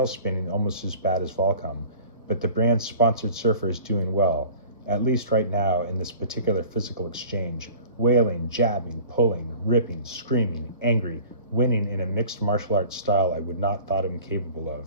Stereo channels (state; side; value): inverted; both; correlation -0.44